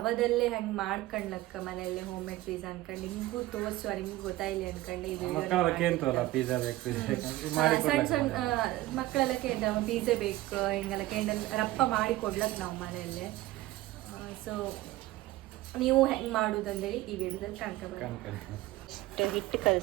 ಹೆಂಗೆ ಮಾಡ್ಕೊಂಡ್ಲಕ್ಕ ಮನೆಯಲ್ಲೇ ಹೋಮ್ ಮೇಡ್ ಪಿಜ್ಜಾ ಅನ್ಕೊಂಡು ನಿಮ್ಗೂ ತೋರಿಸುವ, ನಿಮ್ಗೆ ಗೊತ್ತಾಯಿಲ್ಲ ಅನ್ಕೊಂಡು ಈ ಸಣ್ಣ ಸಣ್ಣ ಮಕ್ಕಳೆಲ್ಲ ಕೇಂದ್ರ ಪಿಜ್ಜಾ ಬೇಕು ಹಿಂಗೆಲ್ಲ ಕೇಂದ್ರ ರಪ್ಪ ಮಾಡಿ ಕೊಡ್ಲಕ್ ನಾವು ಮನೆಯಲ್ಲೇ. ಸೊ ನೀವು ಹೆಂಗೆ ಮಾಡೋದಂದೇಳಿ ಈ ವಿಡಿಯೋದಲ್ಲಿ ಕಾಣ್ಕೊಬೇಕು. ಹಿಟ್ಟು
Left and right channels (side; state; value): left; quieter; 17.2 dB